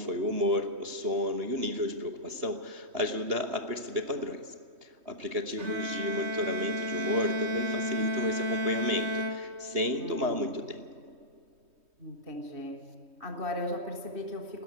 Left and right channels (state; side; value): late; left; 3.2 ms